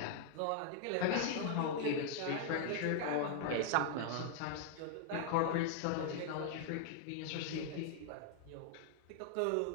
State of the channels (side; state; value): both; different; correlation 0.00